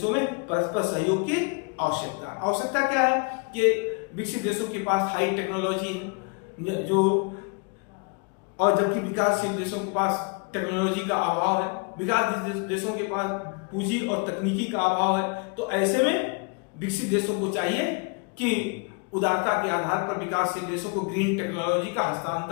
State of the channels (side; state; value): right; quieter; 33.7 dB